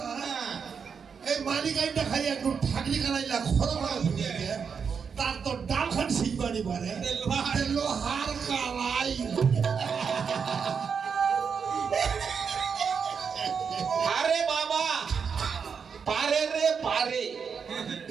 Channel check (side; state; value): left; quieter; 6.3 dB